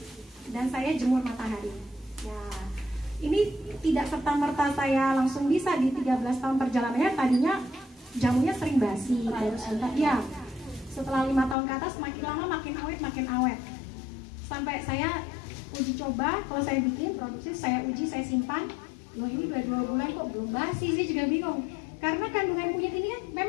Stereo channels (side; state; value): right; drops out; at 11.6 s